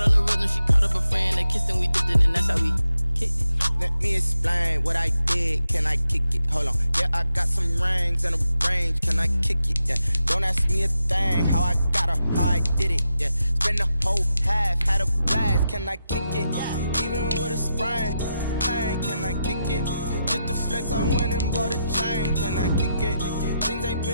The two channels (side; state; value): both; inverted; correlation -0.86